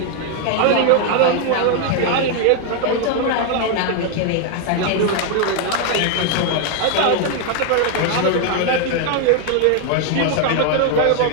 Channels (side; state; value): both; different; correlation 0.00